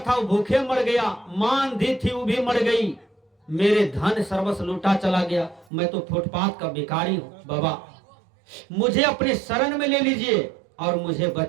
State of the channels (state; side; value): drops out; left; at 5.7 s